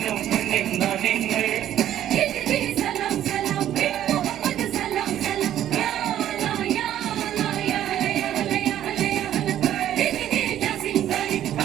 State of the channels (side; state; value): left; quieter; 11.6 dB